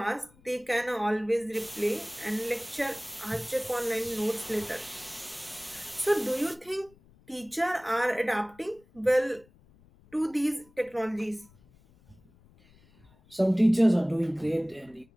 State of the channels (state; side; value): noise; left; rumble, 28 dB below the sound